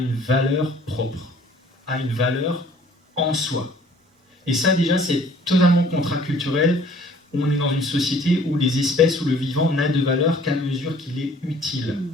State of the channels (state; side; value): normal; both; correlation 0.55